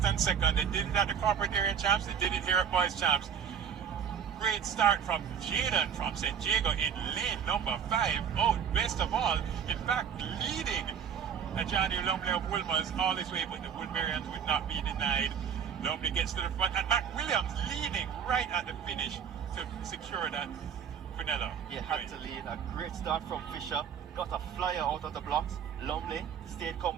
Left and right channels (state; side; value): quieter; left; 7.9 dB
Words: and second. They did it at the corporate area champs, they did it here at boys champs. Great start from Jaden from St. Jago in lane number 5. Oh, best of all, in fact, leading Johnny Lumley of Wolmer's all this way, but the Woodburyans would not be denied. Lumley gets to the front, and McWilliams leading right at the finish to secure that Quinella. He had to lead. A great start from Fisher. Got a flyer out of the blocks. Lumley stayed